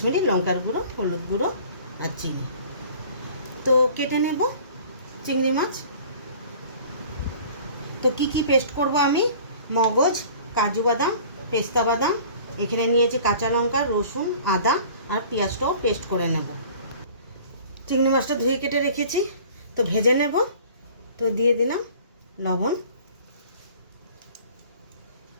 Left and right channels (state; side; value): inverted; both; correlation -0.47